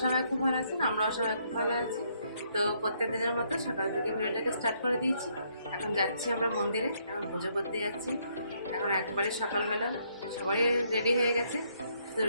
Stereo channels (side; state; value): both; inverted; correlation -0.71